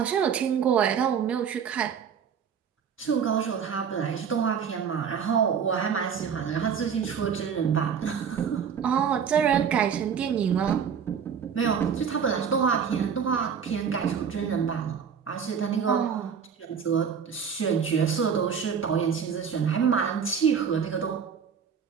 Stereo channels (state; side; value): quieter; left; 7.1 dB